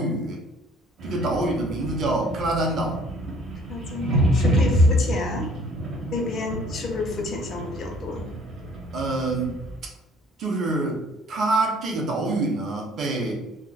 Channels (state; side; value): normal; both; correlation 0.57